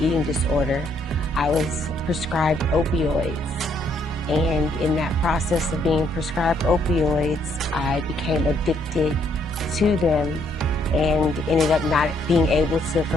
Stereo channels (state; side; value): normal; both; correlation 0.70